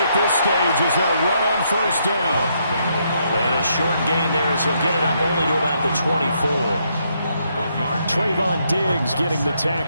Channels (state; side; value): inverted; both; correlation -0.75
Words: at this stage as they'll run on first down. And a short gain there as he'll get it up only to about the 24. Trayvon Diggs getting the